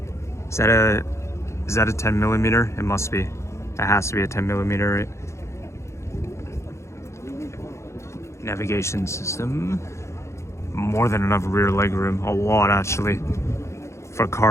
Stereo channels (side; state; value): right; late; 0.14 ms